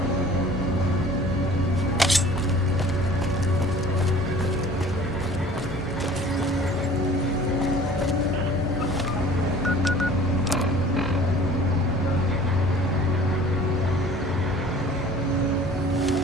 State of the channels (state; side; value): normal; both; correlation 0.46